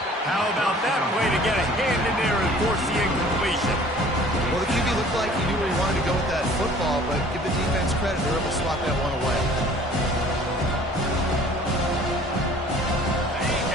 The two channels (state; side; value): normal; both; correlation 0.51